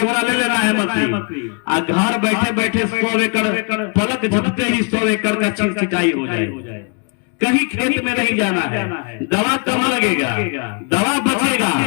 ले लेना है मंत्री, और घर बैठे बैठे 100 एकड़ पलक झपकते ही 100 एकड़ का सिंचाई हो जाए। कहीं खेत में नहीं जाना है, दवा कम लगेगा, दवा बचेगा,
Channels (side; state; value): right; quieter; 35.7 dB